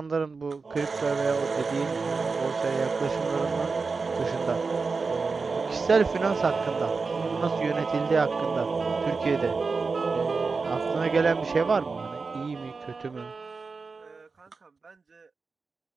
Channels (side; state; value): left; quieter; 4.4 dB